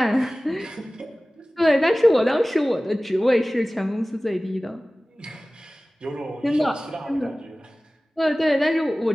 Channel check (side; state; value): both; normal; correlation 0.98